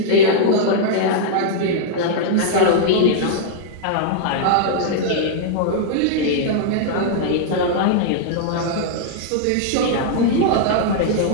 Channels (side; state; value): both; different; correlation -0.01